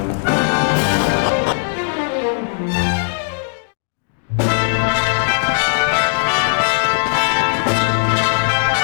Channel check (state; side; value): silent; right; digital silence